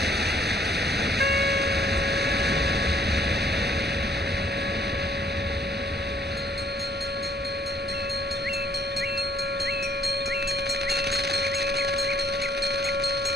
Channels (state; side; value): normal; both; correlation 0.63